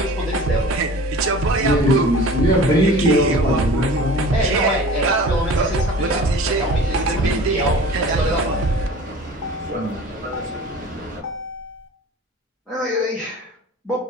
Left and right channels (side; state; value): both; normal; correlation 0.42